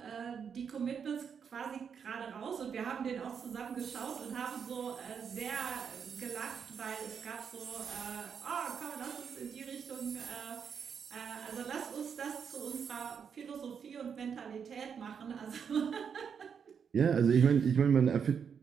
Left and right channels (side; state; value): left; quieter; 7.0 dB